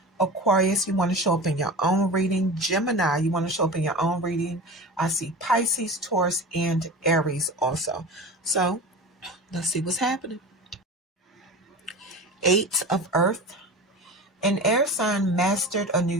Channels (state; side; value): normal; both; correlation 0.32